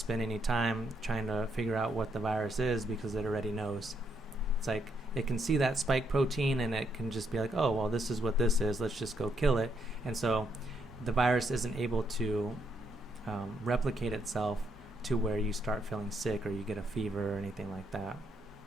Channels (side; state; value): both; normal; correlation 0.76